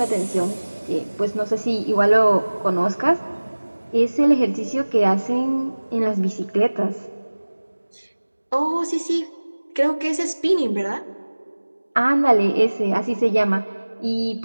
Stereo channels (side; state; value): both; inverted; correlation -1.00